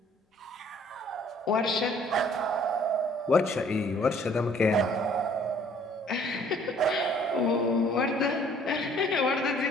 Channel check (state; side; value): normal; both; correlation 0.58